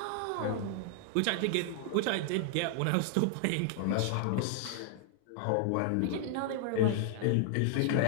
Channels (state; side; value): different; both; correlation 0.00